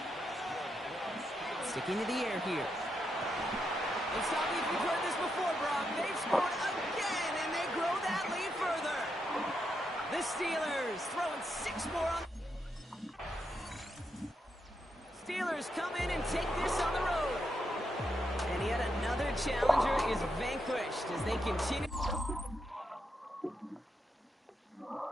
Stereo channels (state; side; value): normal; both; correlation 0.83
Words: Sticking to the air here. It's not if you've heard this before, Brock. They've scored again, and they grow that lead further. The Steelers throwing 6 more on. Steelers come in and take this on the road. And yet another challenger is vanquished as they continue.